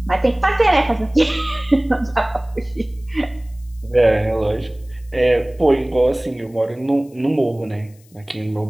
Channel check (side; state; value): left; noise; hiss, 30 dB below the sound